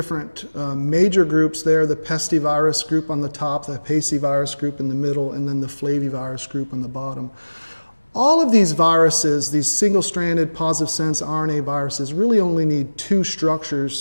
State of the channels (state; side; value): inverted; both; correlation -1.00